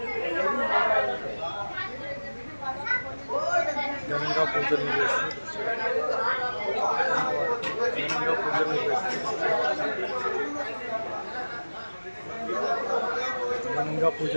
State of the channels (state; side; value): inverted; both; correlation -1.00